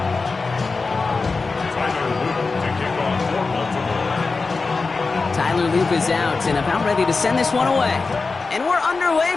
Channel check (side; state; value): right; quieter; 4.1 dB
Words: Tyler Loop is out and about ready to send this one away. And we're